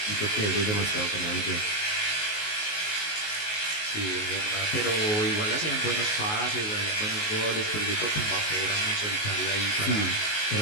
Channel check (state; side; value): late; right; 19 ms